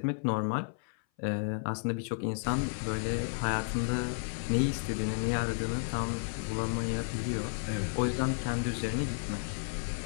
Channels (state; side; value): silent; right; 56 dB below the other